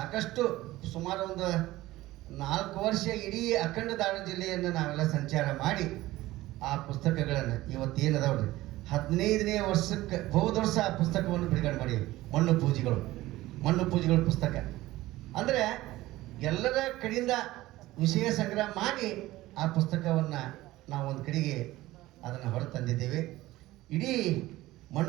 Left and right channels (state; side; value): quieter; left; 17.3 dB